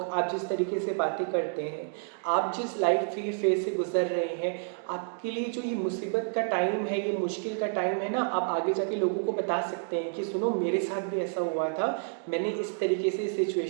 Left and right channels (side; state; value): left; silent; digital silence